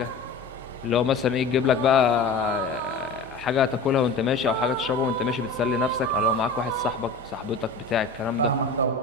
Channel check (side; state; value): right; quieter; 3.8 dB